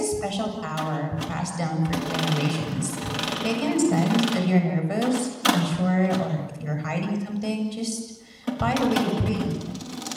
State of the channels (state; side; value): identical; both; correlation 1.00